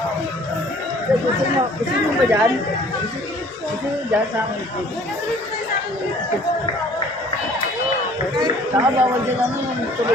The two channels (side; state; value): right; noise; hum, 28 dB below the sound